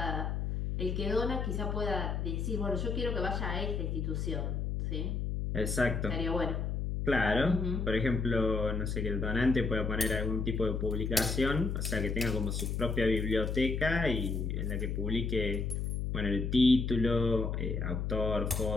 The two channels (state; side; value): noise; left; hum, 1 dB below the sound